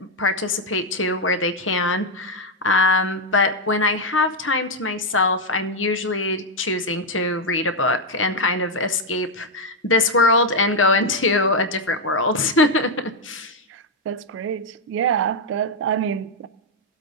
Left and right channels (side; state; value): both; normal; correlation 0.01